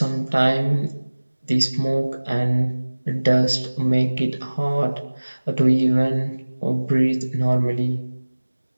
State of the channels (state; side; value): inverted; both; correlation -1.00